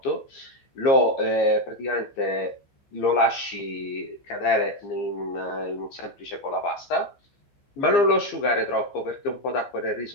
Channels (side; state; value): right; late; 15 ms